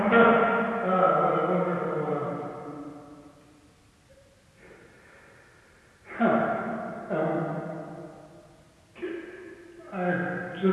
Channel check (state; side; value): identical; both; correlation 1.00